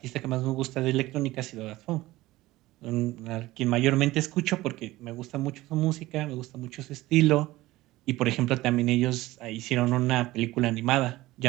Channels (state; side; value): quieter; left; 17.9 dB